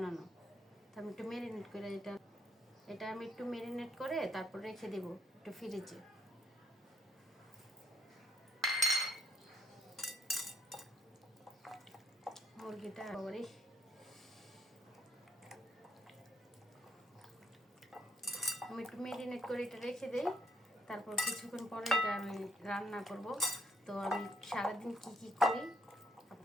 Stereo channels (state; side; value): normal; both; correlation 0.70